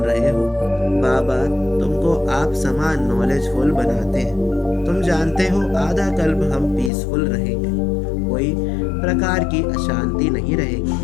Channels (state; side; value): drops out; right; at 6.9 s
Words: रहे हो। बाबा तुमको आप समान नॉलेजफुल बनाते हैं। तुम जानते हो आधा कल्प हम पीसफुल रहेंगे, कोई प्रकार की अशांति नहीं